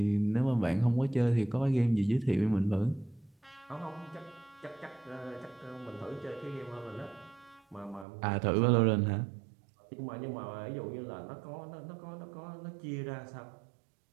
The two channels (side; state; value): left; drops out; at 8.1 s